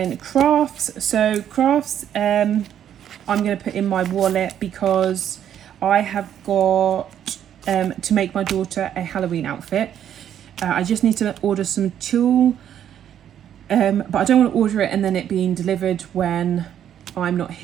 crafts. So crafts, I'm going to put in my wallet because I have got to make my daughter a Halloween outfit. I just need to order some tulle. But I don't want to order it and then it being delivered when I'm not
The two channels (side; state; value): left; quieter; 9.9 dB